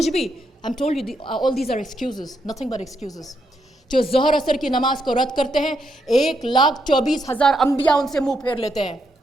بھی. I'm told you all these are excuses, nothing but excuses. جو ظہر عصر کی نماز کو رد کرتے ہیں 1,24,000 انبیاء ان سے منہ پھیر لیتے ہیں،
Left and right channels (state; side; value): normal; both; correlation 0.79